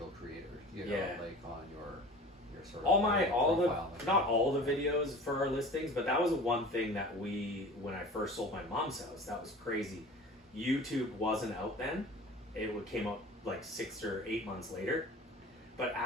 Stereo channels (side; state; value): both; normal; correlation 0.40